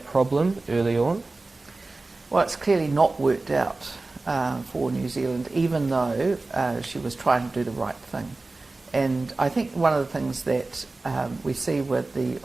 problem early on? Well, it's clearly not worked out for New Zealand, even though she was trying to do the right thing. And I think one of the things that we see with the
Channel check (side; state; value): left; quieter; 3.3 dB